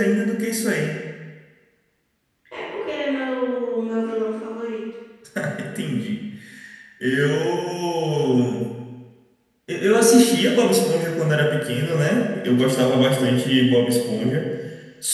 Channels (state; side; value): identical; both; correlation 1.00